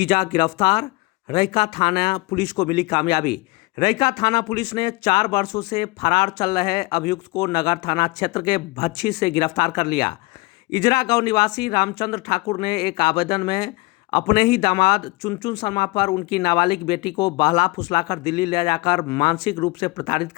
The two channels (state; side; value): quieter; right; 23.4 dB